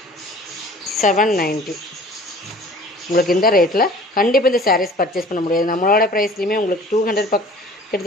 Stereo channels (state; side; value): normal; both; correlation 0.47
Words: 790 உங்களுக்கு இந்த ரேட்டில் கண்டிப்பாக இந்த சாரீஸ் பர்ச்சேஸ் பண்ண முடியாது. நம்மளோட ப்ரைஸ்லையுமே உங்களுக்கு 200